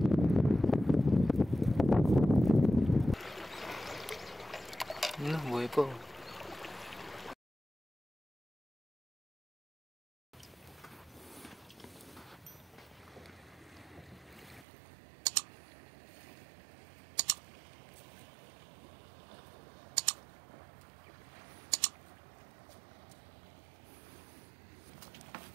Ano, buhay po.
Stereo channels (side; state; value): left; drops out; at 14.7 s